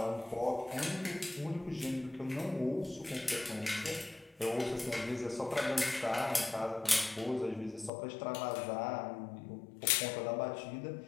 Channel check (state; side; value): drops out; right; at 7.9 s